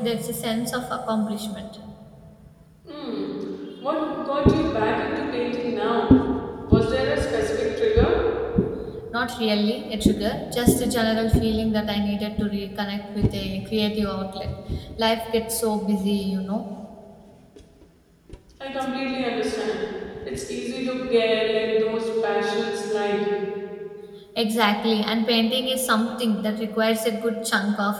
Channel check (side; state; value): both; identical; correlation 1.00